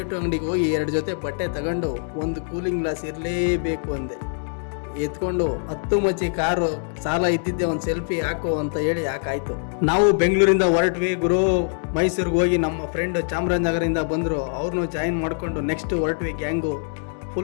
ಅಂಗಡಿಗೆ ಹೋಗಿ 2 ಜೊತೆ ಬಟ್ಟೆ ತಗೊಂಡು ಒಂದು ಕೂಲಿಂಗ್ ಗ್ಲಾಸ್ ಇರಲೇಬೇಕು ಅಂದೆ. ಎತ್ಕೊಂಡು 10 ಮಚ್ಚಿ ಕಾರು ಸಾಲ ಇದ್ದಿದ್ದೆ, ಒಂದು ಸೆಲ್ಫಿ ಹಾಕು ಅಂತ ಹೇಳಿ ಹಾಕಾಯ್ತು. ನಾವು ಬೆಂಗಳೂರಿಂದ ಹೊರಟ್ವಿ ಗುರು. ಮೈಸೂರಿಗೆ ಹೋಗಿ ನಮ್ಮ ಫ್ರೆಂಡ್ ಚಾಮರಾಜನಗರದಿಂದ ಬಂದರು, ಅವ್ರನ್ನೂ ಜಾಯಿನ್ ಮಾಡಿಕೊಂಡು ನೆಕ್ಸ್ಟ್ ಹೊರಟ್ವಿ ಗ್ಯಾಂಗು.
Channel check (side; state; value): right; silent; digital silence